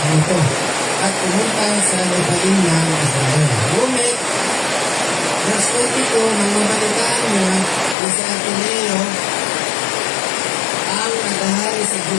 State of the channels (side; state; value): right; drops out; at 8.0 s